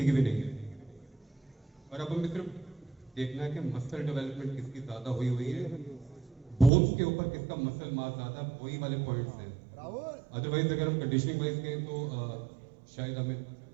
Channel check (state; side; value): drops out; left; at 6.7 s